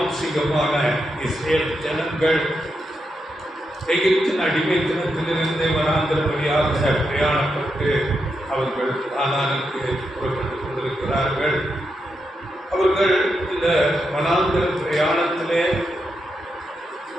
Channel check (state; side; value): normal; both; correlation 0.84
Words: இஸ்ரேல் ஜனங்கள் எகிப்தின் அடிமைத்தனத்திலிருந்து வனாந்திர வழியாக பிரயாணப்பட்டு அவர்கள் கானானுக்கு புறப்பட்டுக் கொண்டிருக்கிறார்கள். அவர்கள் இந்த வனாந்திர பிரயாணத்திலே